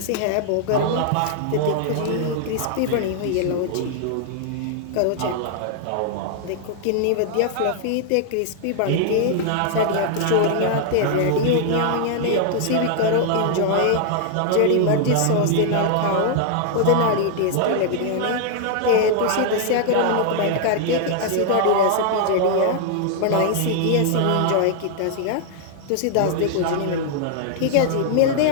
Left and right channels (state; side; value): different; both; correlation 0.00